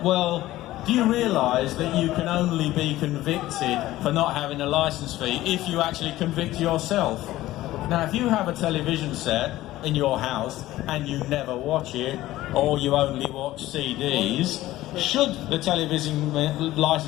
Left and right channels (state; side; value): quieter; right; 15.9 dB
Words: Well, do you realise that you can only be convicted for not having a licence fee if you actually convict yourself? Now, if you have a television set in your house and you never watch it, or you only watch CDs, should the television